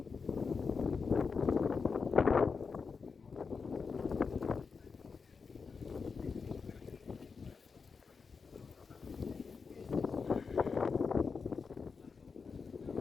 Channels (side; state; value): right; quieter; 5.1 dB